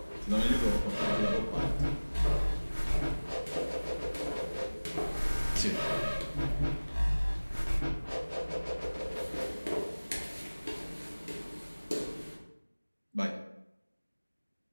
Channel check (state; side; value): inverted; both; correlation -1.00